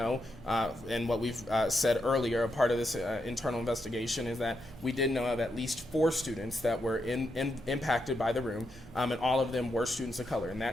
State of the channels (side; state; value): both; normal; correlation 0.83